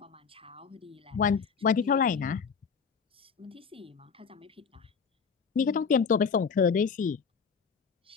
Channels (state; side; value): quieter; right; 6.0 dB